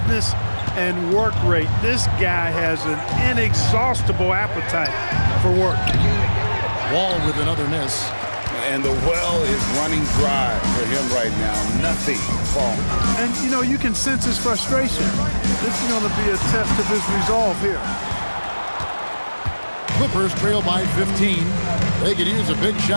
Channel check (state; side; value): inverted; both; correlation -1.00